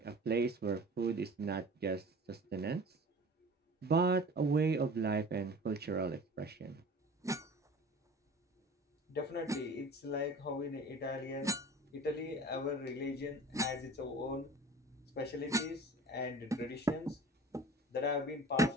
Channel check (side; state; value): both; normal; correlation 0.42